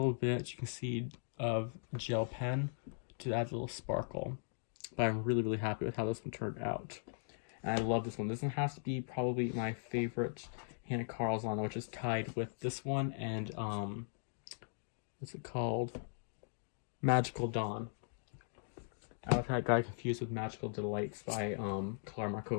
bit, you can see, of gel pen to add a little sparkle. But I'm really, really happy with how this one turned out. And I love this one. This one has to be probably my favorite Hannah Carlson, which is tied with this one and, what's it called? Magical Dawn. I got confused with Magical Delights by Clara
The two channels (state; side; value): silent; right; digital silence